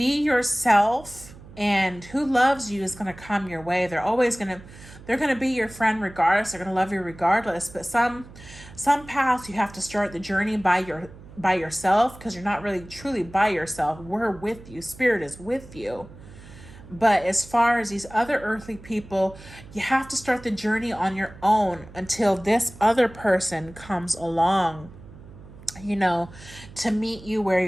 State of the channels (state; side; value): noise; right; hum, 19 dB below the sound